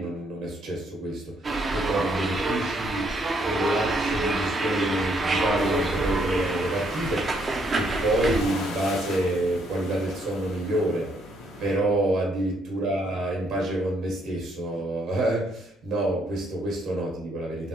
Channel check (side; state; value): both; normal; correlation 0.71